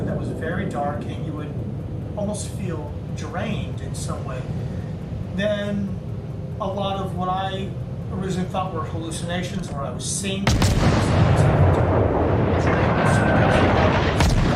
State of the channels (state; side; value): identical; both; correlation 1.00